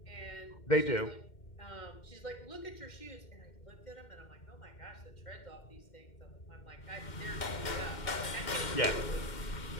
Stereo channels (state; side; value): late; right; 2.1 ms